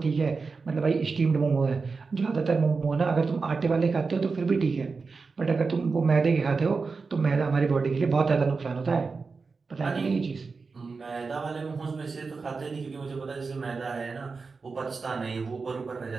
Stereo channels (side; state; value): left; quieter; 4.5 dB